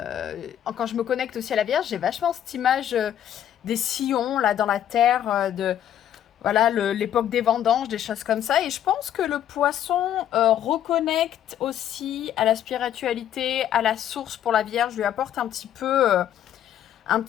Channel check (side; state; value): right; quieter; 10.6 dB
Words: je me connecte aussi à la Vierge, j'ai vachement cette image des sillons là dans la terre, de voilà l'époque des vendanges, des choses comme ça, et je pense que le poisson reconnecte aussi à la spiritualité, à la source pour la Vierge, lui apporte un petit peu un